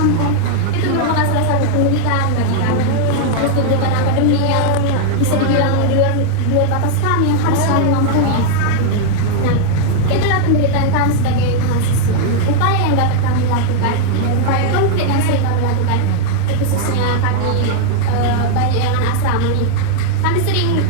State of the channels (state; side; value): different; both; correlation -0.01